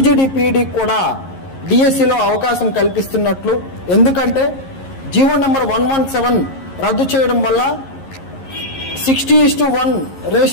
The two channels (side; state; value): right; late; 11 ms